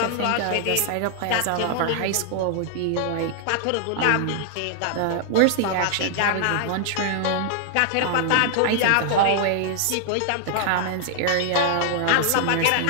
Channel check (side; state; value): both; different; correlation -0.01